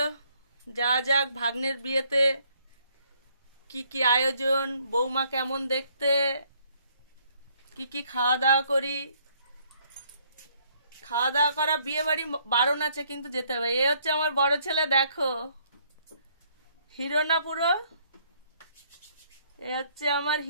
যাওয়া যাক ভাগ্নের বিয়েতে। কি কি আয়োজন, বৌমা কেমন দেখতে, কি কি খাওয়া দাওয়া করি। খাওয়া দাওয়া করা, বিয়ে বাড়ি বারণ আছে কিন্তু যেতে হবে। এ হচ্ছে আমার বড় ছেলে, দেখো হিরো না পুরো। এ হচ্ছে আমার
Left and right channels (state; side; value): inverted; both; correlation -0.67